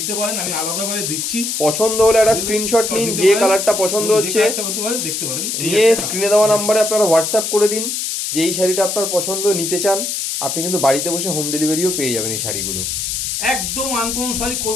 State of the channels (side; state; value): left; noise; hiss, 2 dB below the sound